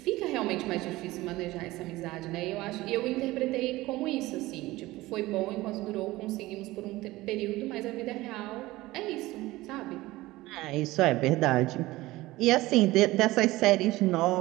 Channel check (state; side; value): quieter; left; 18.6 dB